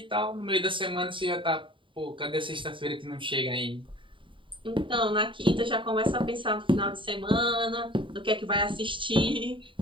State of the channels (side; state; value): left; late; 0.24 ms